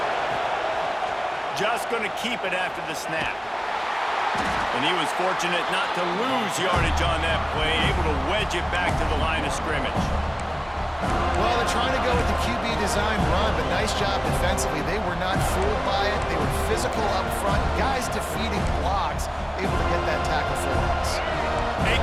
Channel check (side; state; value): both; identical; correlation 1.00